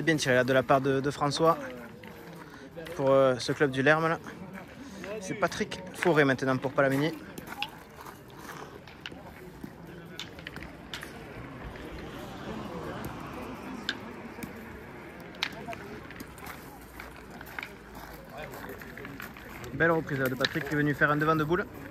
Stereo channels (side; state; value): both; identical; correlation 1.00